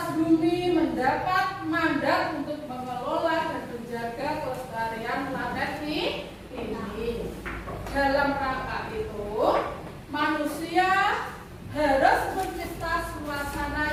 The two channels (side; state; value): both; identical; correlation 1.00